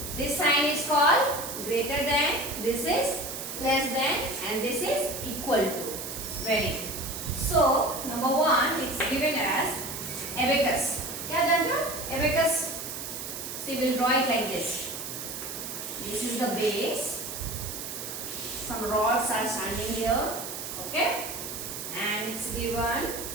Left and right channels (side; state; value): right; noise; hiss, 7 dB below the sound